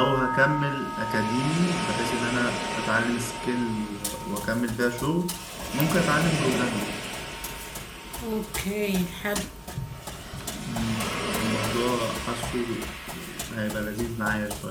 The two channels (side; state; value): both; identical; correlation 1.00